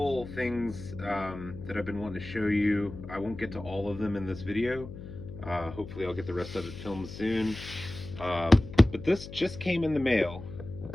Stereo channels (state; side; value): noise; left; hum, 12 dB below the sound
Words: things that I've been wanting to show you. I won't get to all of them in this video. Hopefully, I'll get the rest of it filmed soon. Um, but this just came in the mail.